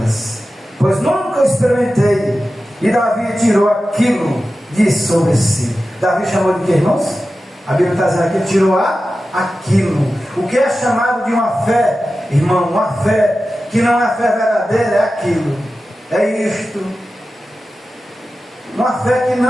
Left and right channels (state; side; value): normal; both; correlation 0.93